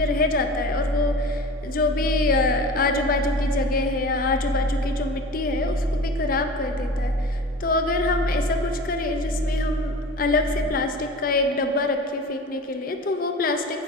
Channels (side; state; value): both; normal; correlation 0.36